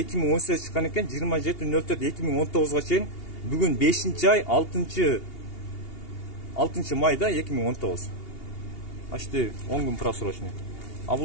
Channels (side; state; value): right; late; 2.8 ms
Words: чыккан экен, 27.04.2019 чейин. Бүгүн 5-ай 6 майда 2019. Почти 10 күн просрочный. А бул